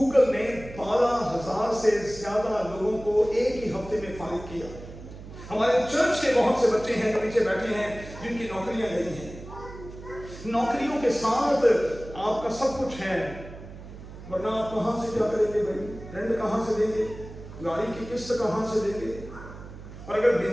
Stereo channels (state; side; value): noise; right; hum, 14 dB below the sound